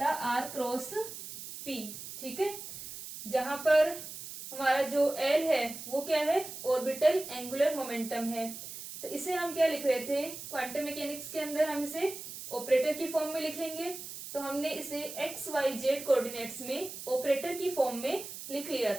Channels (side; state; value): right; noise; hiss, 10 dB below the sound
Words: था आर क्रॉस पी। ठीक है, जहां पर हमारा जो एल है वो क्या है, ऑर्बिटल एंगुलर मोमेंटम है। तो इसे हम क्या लिख रहे थे, क्वांटम मैकेनिक्स के अंदर हम इसे ऑपरेटर की फॉर्म में लिखेंगे। तो हमने इसे एक्स वाई जेड कोऑर्डिनेट्स में ऑपरेटर की फॉर्म में लिख लिया